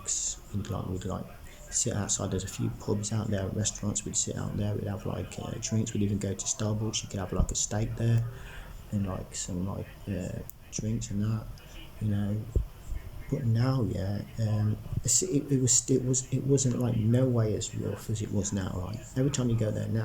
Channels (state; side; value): identical; both; correlation 1.00